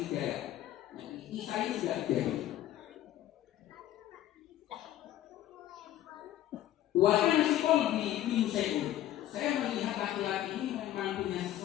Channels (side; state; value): right; quieter; 13.0 dB